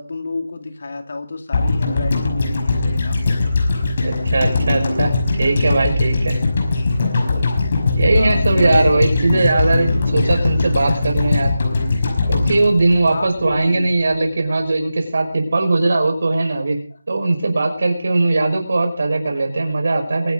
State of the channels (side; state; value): both; inverted; correlation -0.90